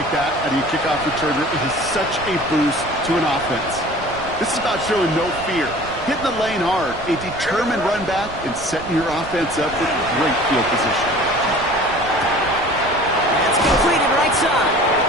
that out of your kickoff returner, it is such a boost to an offense. This is about showing no fear, hitting the lane hard, a determined run back, and setting your offense up with great field position. That's completed right side.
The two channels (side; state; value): right; noise; rumble, 15 dB below the sound